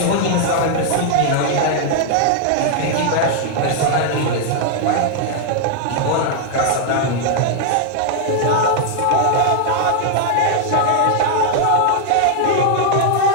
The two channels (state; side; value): different; both; correlation 0.00